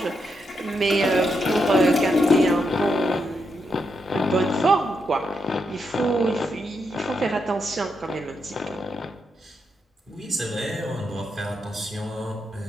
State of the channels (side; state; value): both; normal; correlation 0.82